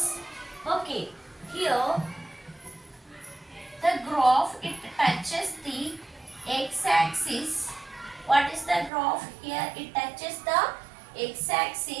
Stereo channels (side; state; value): left; drops out; at 8.9 s